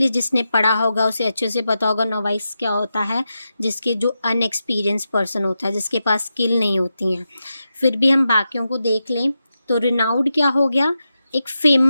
जिसने पढ़ा होगा उसे अच्छे से पता होगा नोवाइस क्या होता है, जिसके जो अनएक्सपीरियंस पर्सन होता है, जिसके पास स्किल नहीं होती हैं. फिर भी हम बाकियों को देख लें तो रिनाउड क्या हो गया? एक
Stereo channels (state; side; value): inverted; both; correlation -0.89